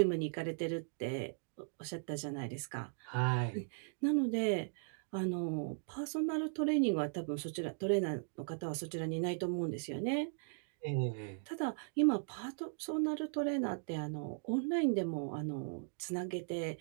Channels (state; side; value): silent; left; digital silence